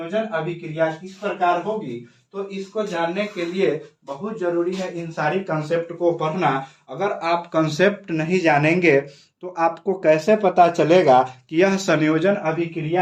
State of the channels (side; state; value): both; identical; correlation 1.00